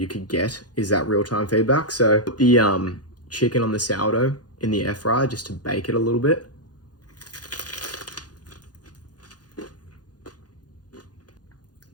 could get, is that real-time feedback. So put the chicken on the sourdough in the air fryer just to bake it a little bit.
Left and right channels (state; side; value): late; right; 0.69 ms